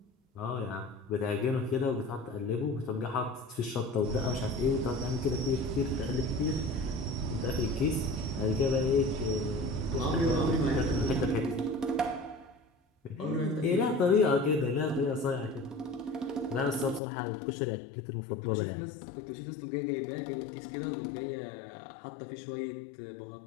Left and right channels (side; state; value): right; drops out; at 17.0 s